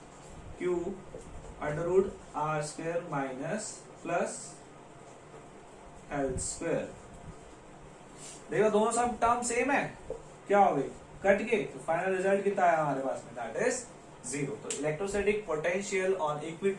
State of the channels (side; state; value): both; identical; correlation 1.00